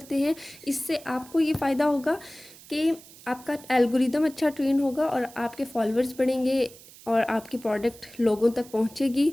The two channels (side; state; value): right; noise; hiss, 21 dB below the sound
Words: हैं। इससे आपको ये फ़ायदा होगा कि आपका एल्गोरिदम अच्छा ट्रेन होगा और आपके फॉलोअर्स बढ़ेंगे और आपकी प्रोडक्ट लोगों तक पहुंचेगी,